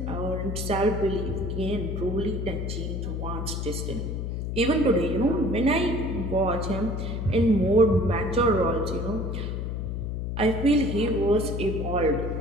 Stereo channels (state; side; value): noise; left; hum, 3 dB below the sound